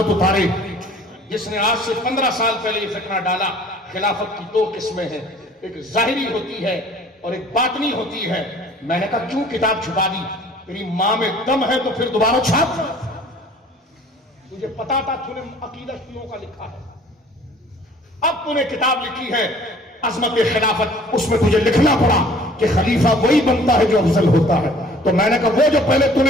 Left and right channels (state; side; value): normal; both; correlation 0.52